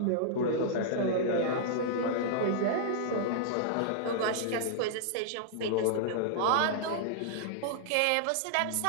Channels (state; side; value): different; both; correlation -0.01